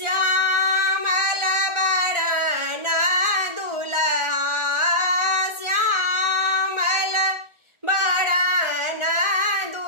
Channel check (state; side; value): late; left; 1.4 ms